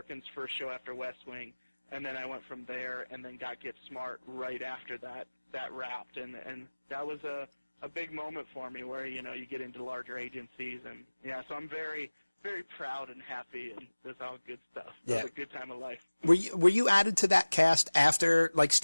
first show after West Wing, and then I went from there and then got Get Smart right after that wrapped, and that was a big moment for me where, you know, you get into larger agencies, and yeah, so I'm very, very proud and happy, and that's all good stuff. It was a good time of life. Were you added to that cast after, like,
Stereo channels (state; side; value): inverted; both; correlation -1.00